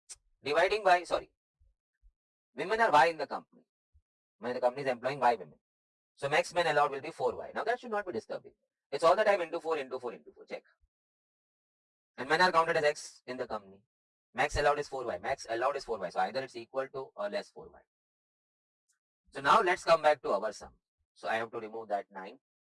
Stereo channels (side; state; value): both; identical; correlation 1.00